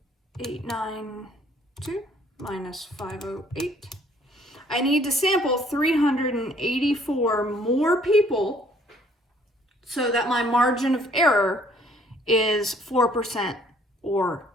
892 minus 508. I need to sample 384 more people so that my margin of error is 4% or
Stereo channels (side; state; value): both; normal; correlation 0.61